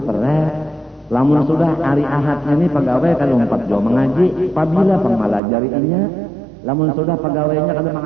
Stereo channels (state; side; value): drops out; left; at 5.4 s